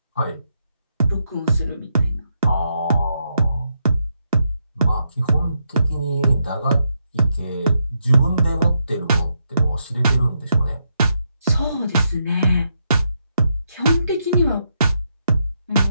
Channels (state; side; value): inverted; both; correlation -0.81